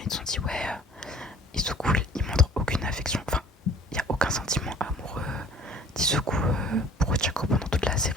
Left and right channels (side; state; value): both; normal; correlation 0.50